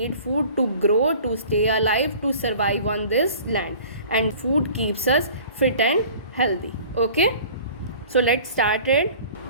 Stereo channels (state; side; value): inverted; both; correlation -0.46